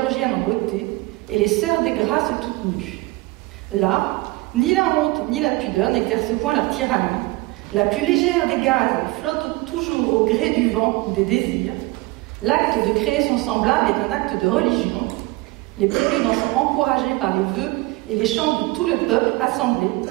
en beauté et les sœurs des Grâces toutes nues. Là, ni la honte ni la pudeur n'exercent point leur tyrannie. La plus légère des gazes flotte toujours au gré du vent ou des désirs. L'acte de créer son semblable est un acte de religion. Les préludes en sont encouragés par les vœux et les chants de tout le peuple assemblé,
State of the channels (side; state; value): left; quieter; 22.0 dB